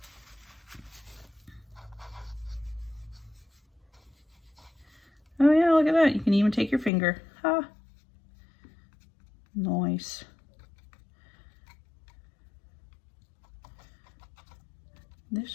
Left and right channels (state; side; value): drops out; right; at 6.9 s